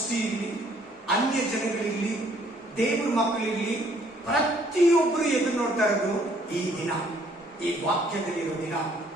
ಇರಲಿ, ಅನ್ಯ ಜನಗಳಿರ್ಲಿ, ದೇವ್ರ ಮಕ್ಕಳಿರ್ಲಿ, ಪ್ರತಿಯೊಬ್ಬರು ಎದುರು ನೋಡ್ತಾ ಇರೋದು ಈ ದಿನ, ಈ ವಾಕ್ಯದಲ್ಲಿರೋ ದಿನ.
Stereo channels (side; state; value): both; normal; correlation 0.63